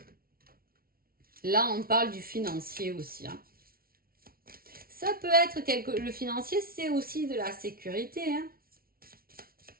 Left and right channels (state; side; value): late; left; 0.43 ms